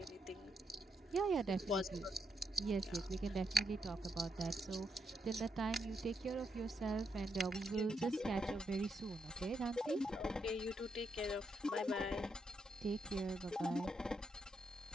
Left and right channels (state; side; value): normal; both; correlation 0.80